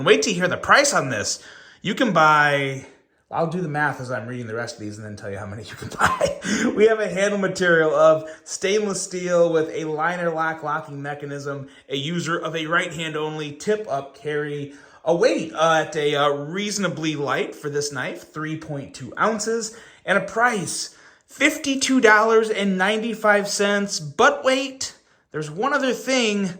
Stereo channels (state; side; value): identical; both; correlation 1.00